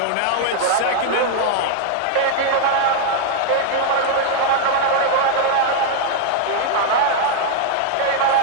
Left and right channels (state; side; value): different; both; correlation 0.00